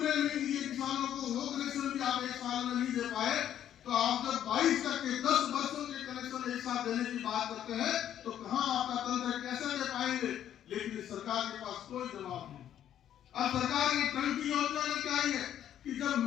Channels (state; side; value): quieter; right; 10.6 dB